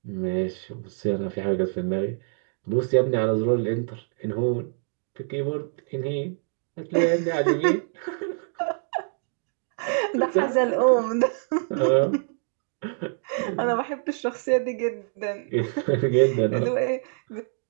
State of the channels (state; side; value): silent; left; 61 dB below the other